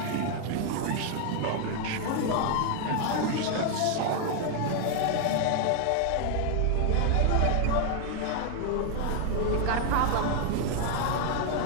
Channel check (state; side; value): different; both; correlation 0.00